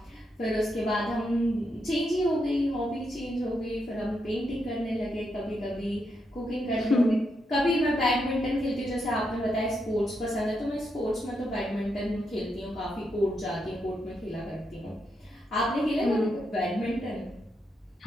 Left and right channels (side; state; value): both; normal; correlation 0.82